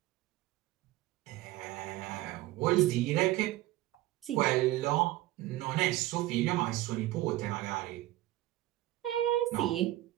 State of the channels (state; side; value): quieter; left; 16.3 dB